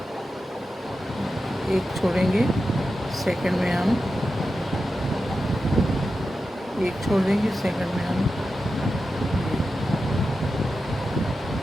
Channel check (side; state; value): both; normal; correlation 0.91